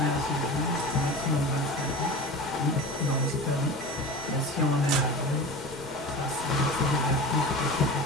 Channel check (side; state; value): both; normal; correlation 0.32